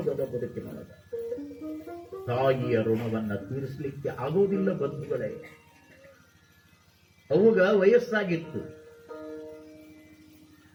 ಬದುಕಿನೊಳಗ? ತಾಯಿಯ ಋಣವನ್ನ ತೀರಿಸಲಿಕ್ಕೆ ಆಗೋದಿಲ್ಲ ಬಂಧುಗಳೇ. ಅವುಗ ವಯಸ್ಸಾಗಿತ್ತು.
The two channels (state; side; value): identical; both; correlation 1.00